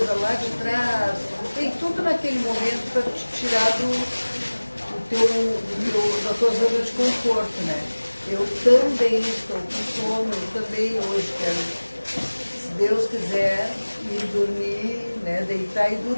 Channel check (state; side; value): inverted; both; correlation -1.00